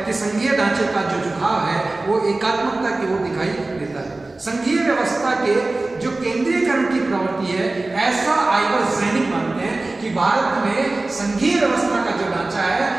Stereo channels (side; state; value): left; quieter; 3.1 dB